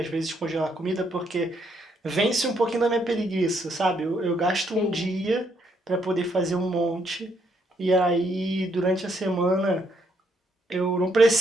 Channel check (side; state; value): both; normal; correlation 0.73